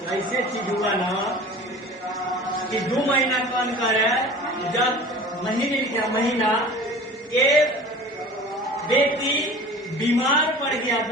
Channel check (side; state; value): both; normal; correlation 0.41